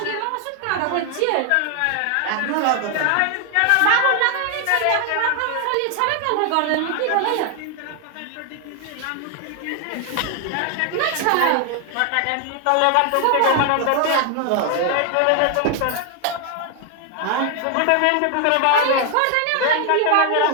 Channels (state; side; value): different; both; correlation 0.00